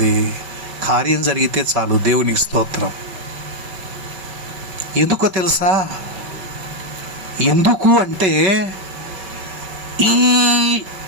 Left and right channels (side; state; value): left; late; 5.3 ms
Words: కార్యం జరిగితే చాలు. దేవునికి స్తోత్రం. ఎందుకో తెలుసా? ఎందుకు అంటే ఈ